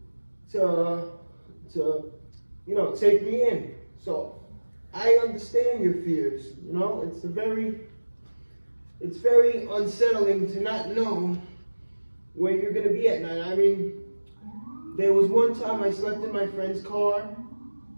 to take me in. So I understand your fears. You know, it's very unsettling to not know where you're gonna be at night. I mean, there was one time I slept in my friend's car,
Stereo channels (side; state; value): both; inverted; correlation -1.00